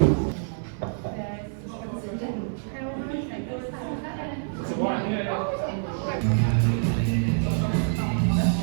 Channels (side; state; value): left; silent; 55 dB below the other